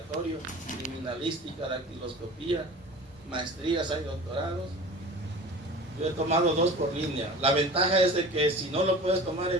criminalística, dactiloscopía, maestrías, hay doctorados. Yo he tomado 2 por línea. La ventaja es de que si no lo puedes tomar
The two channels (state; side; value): normal; both; correlation 0.38